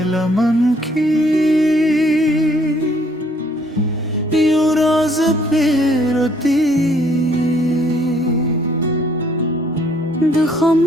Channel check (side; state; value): both; normal; correlation 0.64